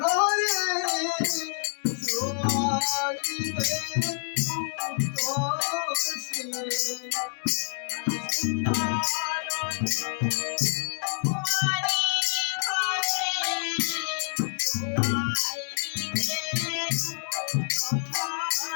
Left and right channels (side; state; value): right; silent; digital silence